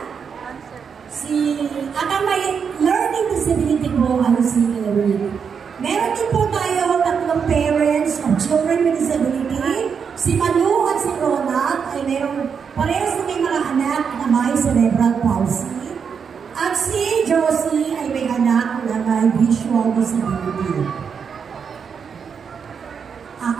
At ang may learning disability po ay si Eric. Meron din po tayo tatlong parents of children with disability. Si Malu at si Ronald ay meron parehas na may mga anak na may cerebral palsy. At si Josie ay may anak na may visual disability.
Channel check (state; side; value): quieter; left; 6.5 dB